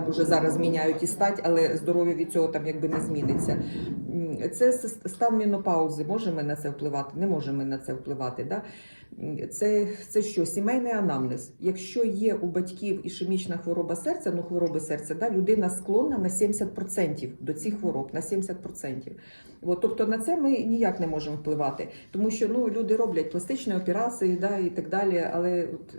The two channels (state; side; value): inverted; both; correlation -1.00